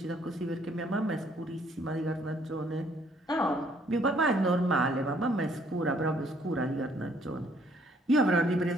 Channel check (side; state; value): both; normal; correlation 0.64